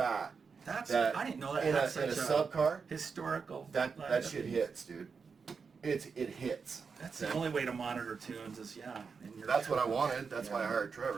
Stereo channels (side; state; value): left; quieter; 5.4 dB